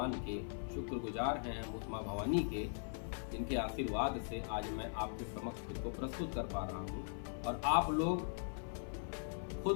के, शुक्रगुजार हैं हम उस माँ भवानी के, जिनके आशीर्वाद से आज मैं आपके समक्ष खुद को प्रस्तुत कर पा रहा हूँ। और आप लोग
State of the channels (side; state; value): right; silent; 51 dB below the other